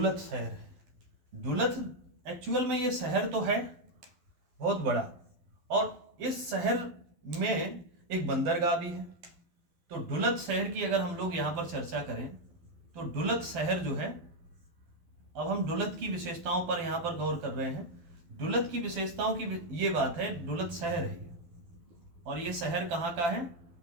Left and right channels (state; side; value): late; left; 12 ms